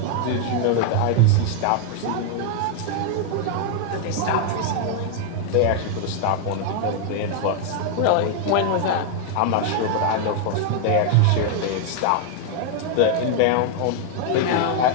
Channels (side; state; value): both; different; correlation 0.00